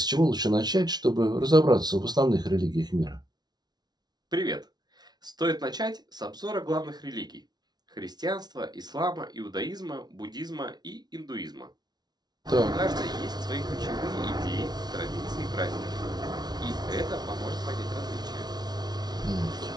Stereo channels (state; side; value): late; left; 0.19 ms